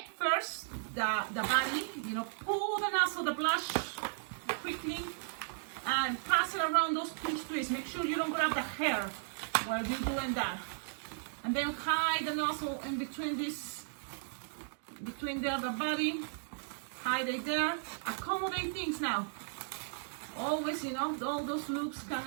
first the body, pull the nozzle, the blush quickly, and pass it around those pinch twists. Make sure you don't grab the hair while you're doing that. And then hide the nozzle in between the body, hide it there, accommodate things now. Always, all those loops can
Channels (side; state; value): left; silent; digital silence